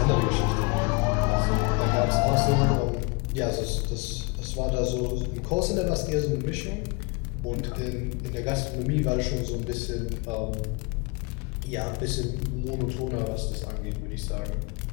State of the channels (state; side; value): quieter; right; 28.9 dB